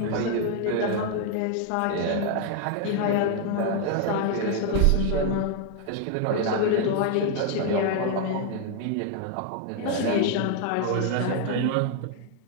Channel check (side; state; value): both; different; correlation 0.00